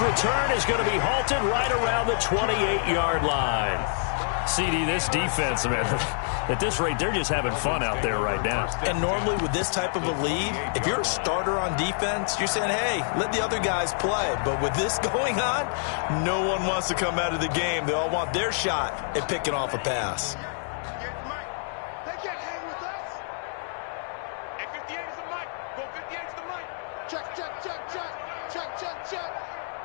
return is going to be halted right around the 28-yard line. CD, this defense, man, at this rate, they're just having fun out there right now. And normally with this type of a lead, if you're a starter on defense, you're saying, hey, let the other guys play. But with this going on, no one wants to come out of the game. They all want their shot at picking off a pass. They can't hang with us. And 58 is the mic. Go 58 is the mic. Check, check, check, check. Check, check, check.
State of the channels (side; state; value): right; silent; digital silence